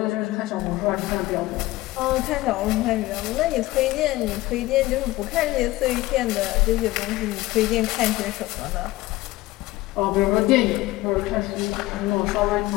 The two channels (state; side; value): quieter; right; 18.5 dB